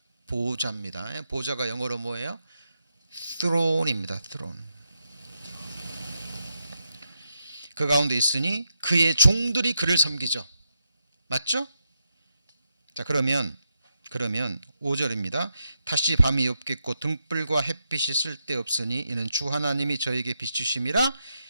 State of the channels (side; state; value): both; inverted; correlation -0.84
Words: 보좌입니다. 보좌가 영어로 뭐예요? throne입니다. throne. 그 가운데 있으니 그의 종들이 그를 섬기죠. 맞죠? 자, 그러면 5절입니다. 다시 밤이 없겠고 등불과 햇빛이 쓸데없으니 이는 주 하나님이 저에게 비추심이라.